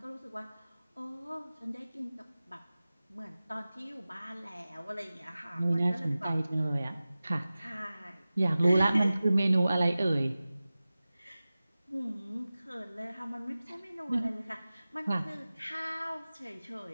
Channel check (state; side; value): inverted; both; correlation -0.97